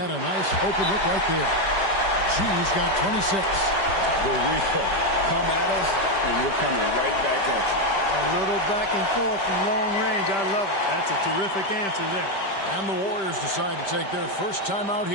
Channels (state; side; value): late; right; 5.1 ms